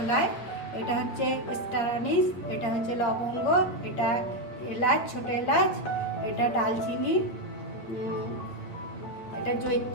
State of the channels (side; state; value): right; late; 8.3 ms